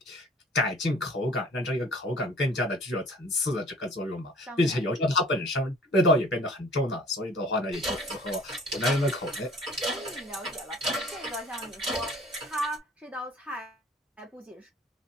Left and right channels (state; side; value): normal; both; correlation 0.50